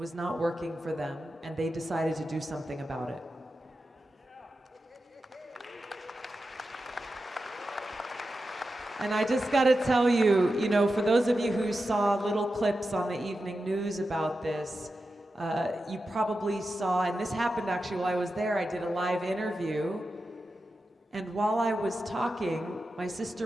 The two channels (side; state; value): both; normal; correlation 0.90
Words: not working for them, and they decided to do something about it. And I just gotta tell you, for those of you who saw little clips on the evening news about this, you probably saw, and this happened actually while I was there, I did a live interview, and while I was talking, my